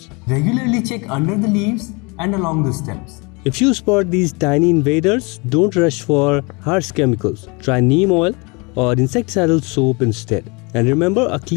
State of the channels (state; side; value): quieter; right; 28.9 dB